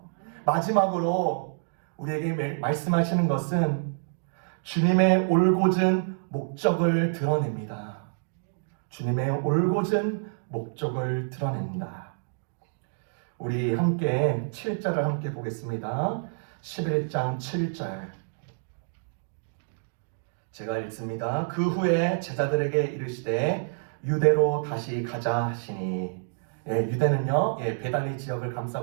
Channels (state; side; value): silent; left; digital silence